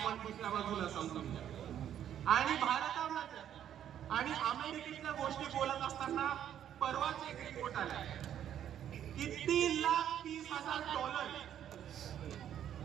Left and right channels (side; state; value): left; quieter; 10.2 dB